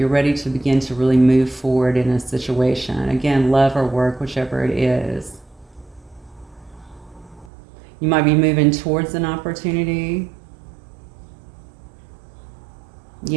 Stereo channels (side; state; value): left; drops out; at 7.5 s